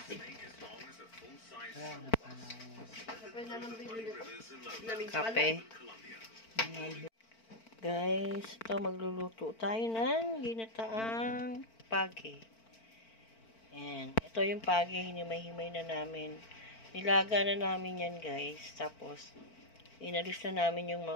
Kape. Guys, ito magluluto tayo ng ginataang pagi. Ayan. Ito yung pagi, hinimay-himay na namin. Nilaga na namin yan, guys. Tapos, inalis na namin yung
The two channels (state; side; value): late; right; 4.5 ms